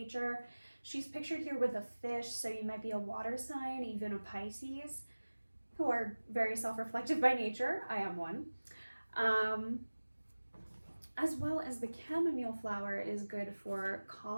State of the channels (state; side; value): inverted; both; correlation -1.00